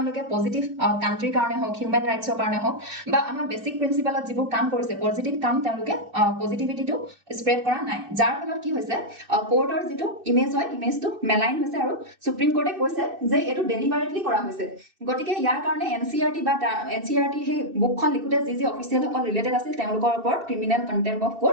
পজিটিভ কান্ট্ৰিৰ কাৰণে হওক হিউম্যান ৰাইটছৰ কাৰণে হওক বা আমাৰ বেসিক প্ৰিন্সিপালত যিবোৰ কাম কৰিছে পজিটিভ কাম তেওঁলোকে পজিটিভিটিটো স্প্ৰেড কৰা নাই যাৰ ফলত কি হৈছে কোৰ্টৰ যিটো ইমেজ হয় ইমেজটো মেলাইন হৈছে আৰু সুপ্ৰিম কোৰ্টে কৈছে যে এটো ডেলিবাৰেটলি কৰা হৈছে গতিকে ইয়াৰ কাৰণে NCERT হে বুকখন লিখোতে যি অফিচিয়েল সকল ৰিলেটেড আছিল তেওঁলোকৰ ওপৰত ক্ৰিমিনেল কন্টেম্প অফ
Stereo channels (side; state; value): left; late; 2.6 ms